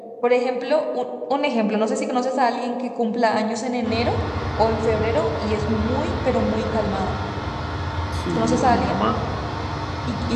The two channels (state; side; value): identical; both; correlation 1.00